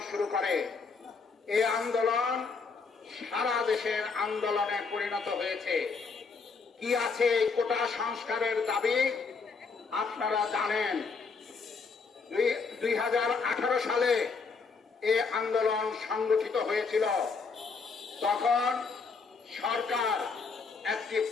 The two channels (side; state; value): right; quieter; 4.8 dB